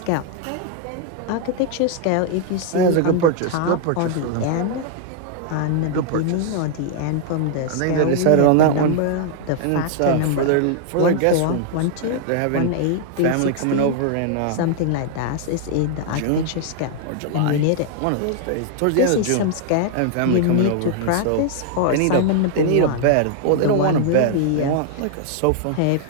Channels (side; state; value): both; different; correlation 0.00